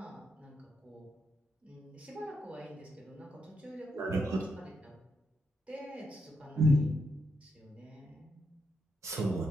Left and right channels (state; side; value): normal; both; correlation 0.81